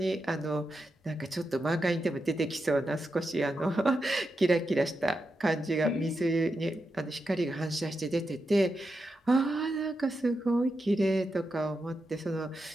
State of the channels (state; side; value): normal; both; correlation 0.87